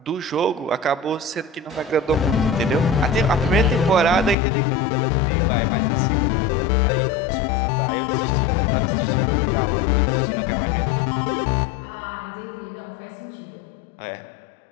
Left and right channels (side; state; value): right; drops out; at 4.4 s